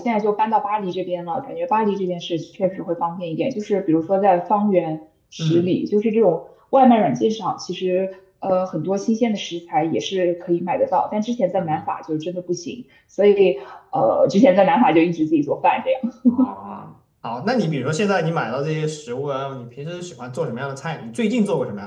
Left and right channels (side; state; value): both; identical; correlation 1.00